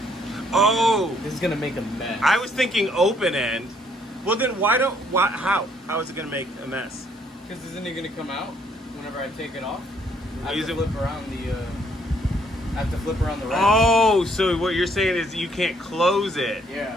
Oh, This is gonna make a mess. I was thinking open end. Well, then how? How is it gonna make a mess? Because isn't it gonna come out whenever I take it off? I Use have it- to flip around the. I have to flip around the rack. Oh, so what you're saying is you can't close it.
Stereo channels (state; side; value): normal; both; correlation 0.67